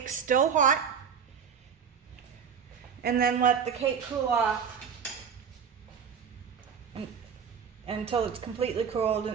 still hot, and then let the cake cool off until it's completely cooled,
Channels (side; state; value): left; quieter; 7.0 dB